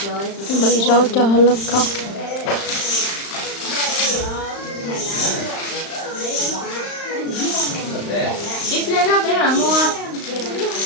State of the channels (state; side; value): late; right; 35 ms